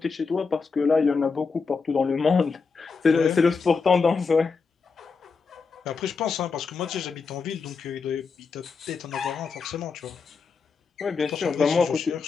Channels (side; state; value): right; quieter; 5.0 dB